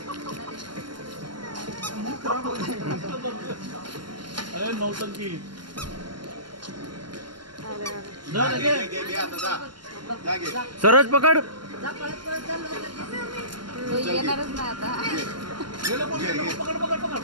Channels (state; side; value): late; left; 0.72 ms